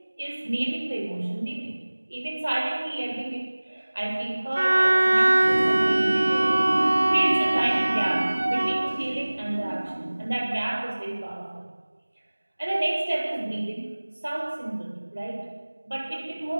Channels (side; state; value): both; inverted; correlation -1.00